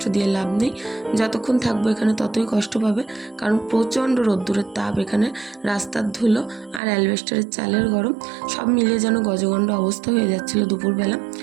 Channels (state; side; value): drops out; left; at 6.8 s